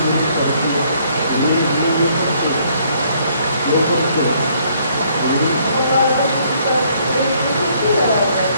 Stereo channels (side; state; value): both; inverted; correlation -0.66